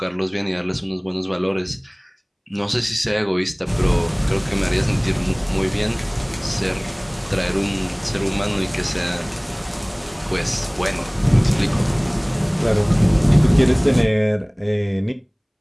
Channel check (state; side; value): identical; both; correlation 1.00